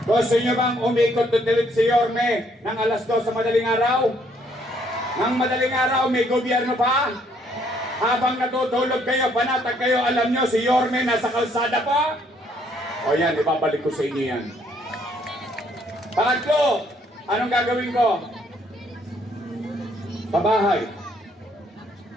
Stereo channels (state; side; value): normal; both; correlation 0.67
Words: Gusto nyo bang umikot tutilid si Yorme ng alas 2 sa madaling araw? Nang madaling araw, may gobyerno pa? Habang natutulog kayo, panatag kayo, alam nyo, si Yorme nasa kalsada pa? O yan, ibabalik ko sa inyo yan. Pangatlo, anong gagawin ko? Sa bahay,